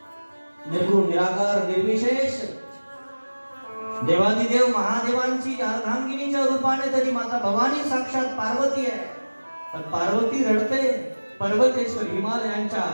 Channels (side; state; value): both; inverted; correlation -1.00